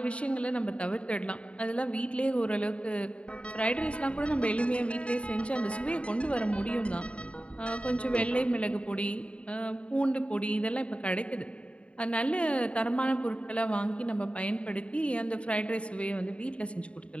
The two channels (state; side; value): late; right; 0.060 ms